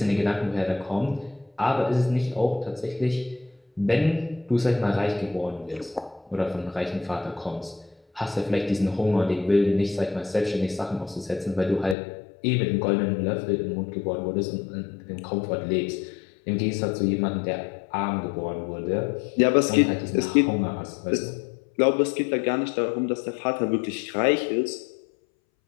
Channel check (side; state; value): right; drops out; at 12.0 s